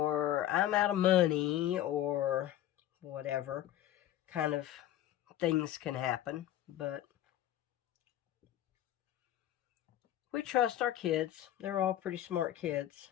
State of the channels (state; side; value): quieter; right; 12.6 dB